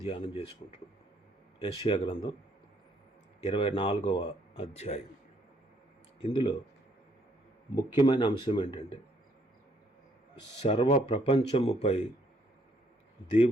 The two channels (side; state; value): both; normal; correlation 0.69